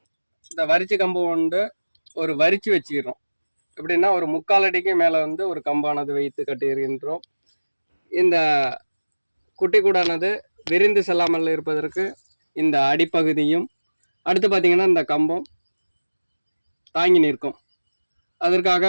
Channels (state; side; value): inverted; both; correlation -1.00